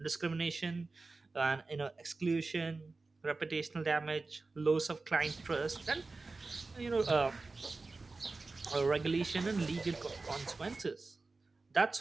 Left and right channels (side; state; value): left; quieter; 3.7 dB